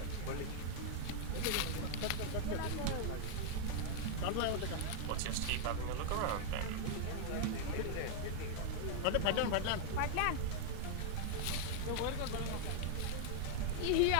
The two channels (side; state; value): both; different; correlation -0.01